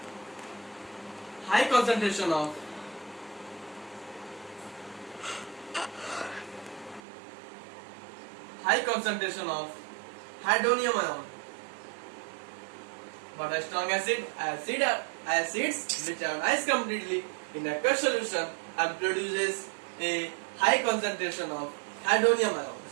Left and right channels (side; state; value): left; drops out; at 7.0 s